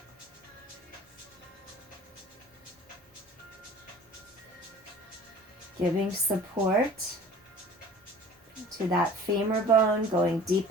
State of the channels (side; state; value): both; normal; correlation 0.45